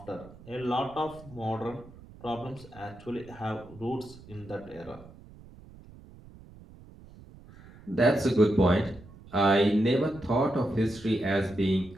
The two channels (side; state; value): right; noise; rumble, 20 dB below the sound